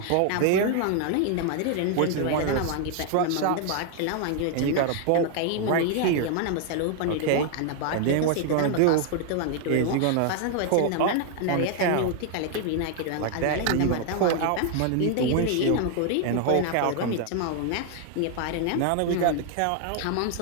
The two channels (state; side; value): different; both; correlation 0.00